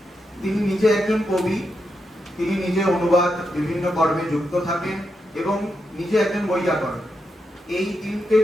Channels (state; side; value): normal; both; correlation 0.85